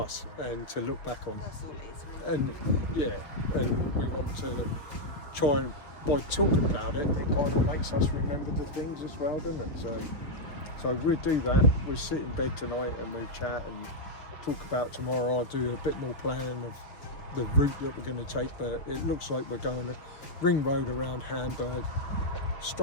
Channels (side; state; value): right; late; 6.7 ms